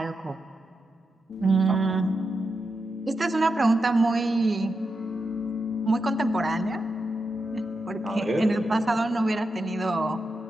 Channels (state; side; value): normal; both; correlation 0.88